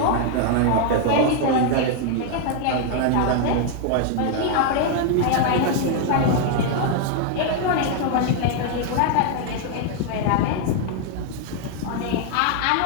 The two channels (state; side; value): different; both; correlation 0.00